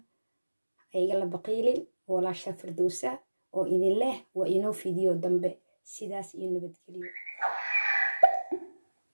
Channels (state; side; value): inverted; both; correlation -1.00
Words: هيجلا بقيلين ولا شافر دوسة وإذن الله وإنه فيديو دنبه سيداس إنه بتكلم